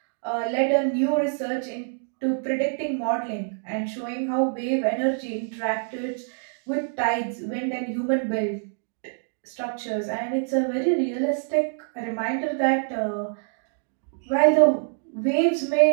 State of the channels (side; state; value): left; silent; digital silence